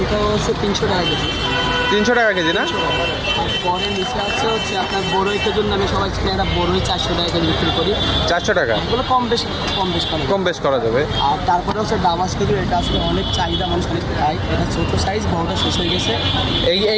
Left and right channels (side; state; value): both; identical; correlation 1.00